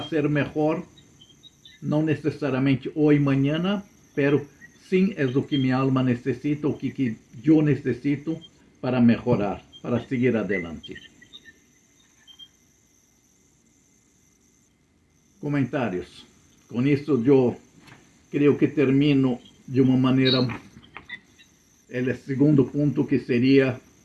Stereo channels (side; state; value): both; identical; correlation 1.00